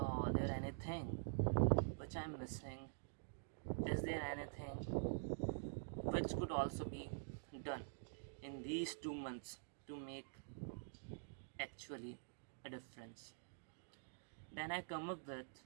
there anything which I'm missing? Is there anything which could also be done in these 2 months to make actually a difference? Then I come up with,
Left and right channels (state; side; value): silent; left; digital silence